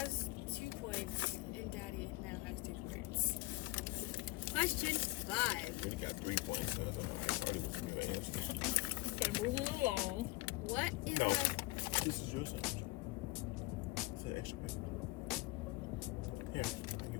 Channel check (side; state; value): right; quieter; 21.7 dB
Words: 2 points and daddy now has 2 points. Question 5. We got 3 points. So iCarly was the real answer. Okay, moving along. What is No. my This is your sandwich. It's an extra paper. Here, I'll give